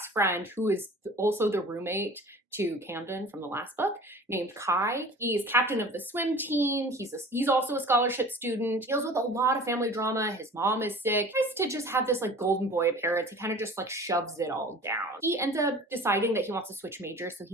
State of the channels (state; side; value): normal; both; correlation 0.43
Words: friend, who is also the roommate to Camden from the last book, named Kai. He's captain of the swim team. He's also a scholarship student. Deals with a lot of family drama. His mom is sick. Tries to just have this like golden boy appearance. He kind of just like shoves it all down. He ends up deciding that he wants to switch majors, so